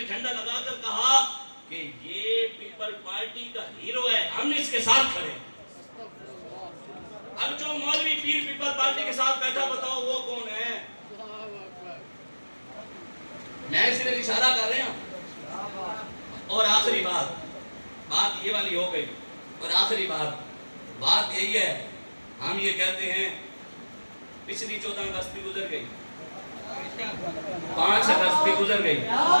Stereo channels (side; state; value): both; inverted; correlation -1.00